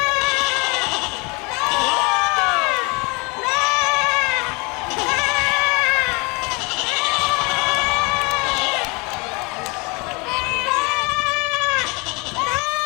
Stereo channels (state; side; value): quieter; right; 28.5 dB